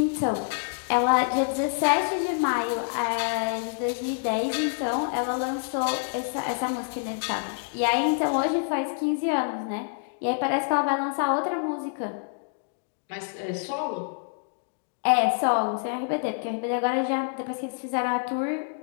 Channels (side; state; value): right; silent; digital silence